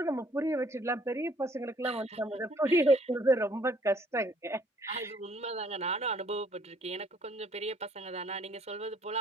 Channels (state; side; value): normal; both; correlation 0.62